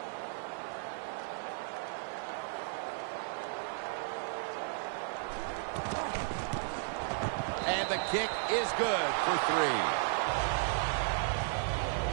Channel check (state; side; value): silent; left; 55 dB below the other